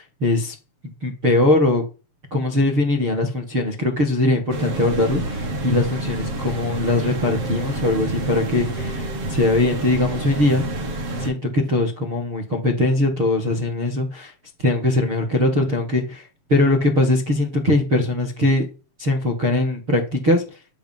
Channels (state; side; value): late; left; 7.3 ms